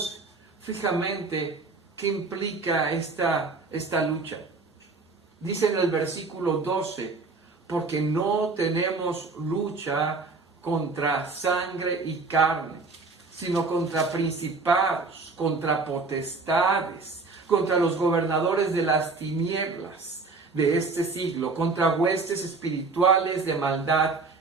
fijamente qué implica esta lucha. Dice en el versículo 12, porque no tenemos lucha contra sangre y carne, sino contra principados, contra potestades, contra los gobernadores de las tinieblas de este siglo, contra huestes espirituales de maldad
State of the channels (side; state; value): left; quieter; 4.0 dB